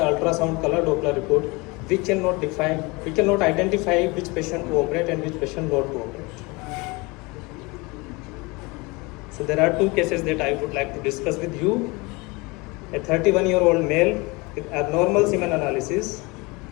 color Doppler report. We cannot identify which patient to operate and which patient not to operate. So there are two cases that I would like to discuss with you. A 31-year-old male with abnormal semen analysis.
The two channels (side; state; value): right; quieter; 25.8 dB